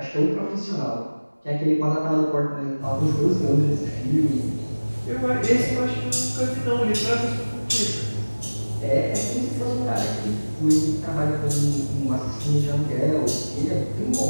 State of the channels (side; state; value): both; inverted; correlation -1.00